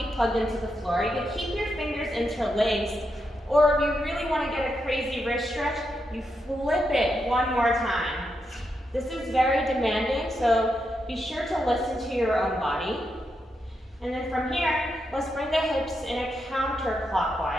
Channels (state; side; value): normal; both; correlation 0.84